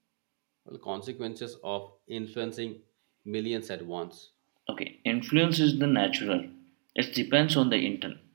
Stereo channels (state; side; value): quieter; left; 39.5 dB